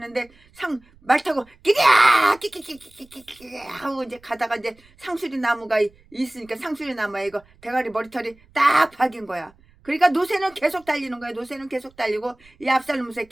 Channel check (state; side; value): noise; right; rumble, 29 dB below the sound